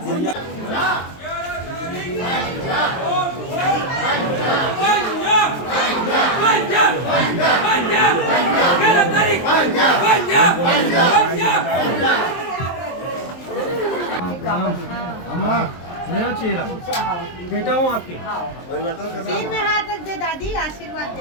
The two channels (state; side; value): late; right; 23 ms